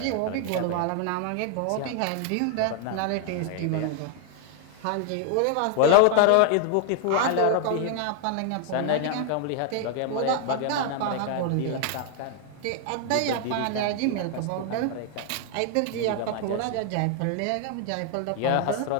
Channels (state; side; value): different; both; correlation 0.00